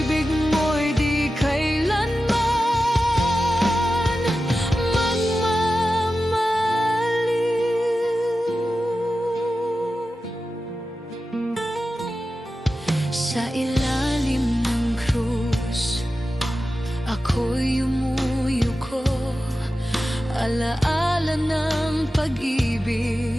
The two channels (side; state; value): both; normal; correlation 0.93